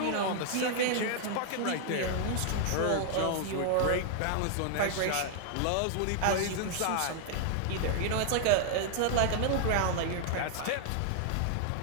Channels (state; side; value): different; both; correlation 0.00